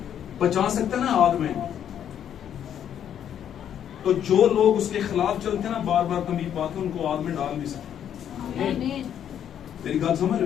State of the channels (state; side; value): quieter; right; 9.5 dB